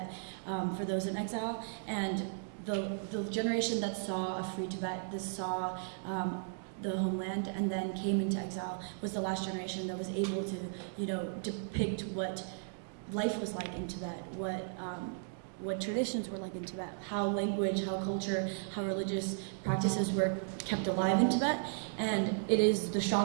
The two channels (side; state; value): left; silent; digital silence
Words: for those in exile. And the generation that saw a free Tibet, that saw the homeland and then came into exile, was the last generation that was able to, depict what life was like in Tibet, what traditions were like in Tibet, how language, how culture, how religious practices were kept alive in Tibet. And it is the